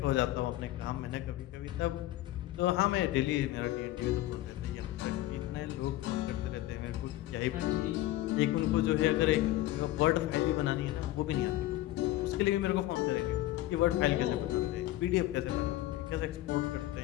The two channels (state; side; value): quieter; right; 15.5 dB